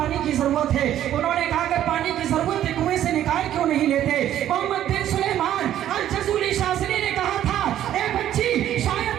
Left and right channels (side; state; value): left; quieter; 11.7 dB